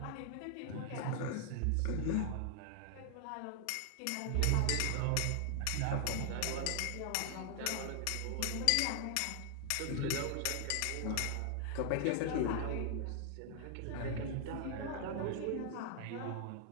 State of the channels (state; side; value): different; both; correlation 0.00